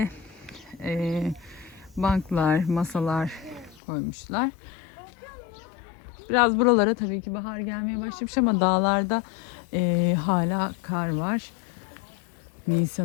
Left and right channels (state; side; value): drops out; right; at 3.8 s